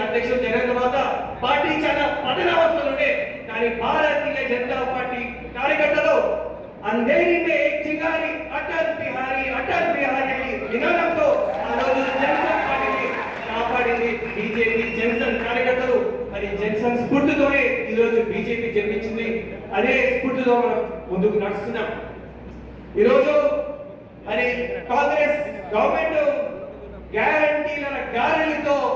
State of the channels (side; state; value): both; identical; correlation 1.00